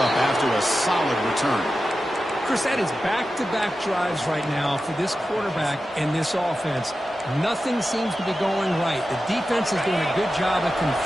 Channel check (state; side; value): normal; both; correlation 0.92